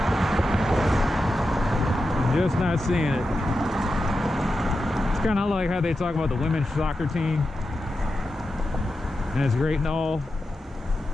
just not seeing it. It's kind of like how they talk about the women's soccer team, and it's great and all,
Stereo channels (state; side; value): normal; both; correlation 0.89